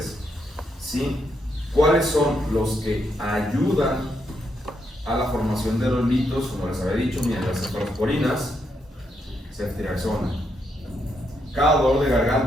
¿Sí? ¿Cuáles son los que ayudan a la formación de los litos? Como les había dicho, miren, las cefalosporinas, ceftriaxona. Cada dolor de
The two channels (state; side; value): normal; both; correlation 0.78